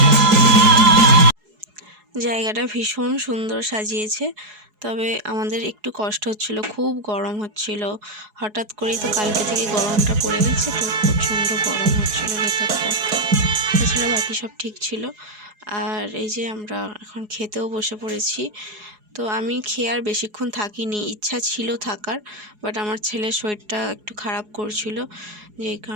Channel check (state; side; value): late; left; 4.8 ms